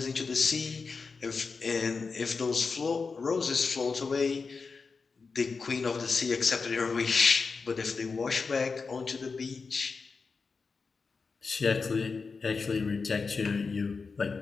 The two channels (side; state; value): right; quieter; 4.7 dB